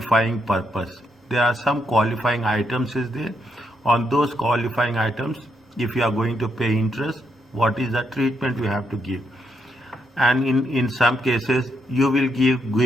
purpose? There are some qualifying items is there. On those qualifying items, if you are going to pay interest, what is the treatment you have to give? And in some cases you will give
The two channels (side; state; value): both; normal; correlation 0.79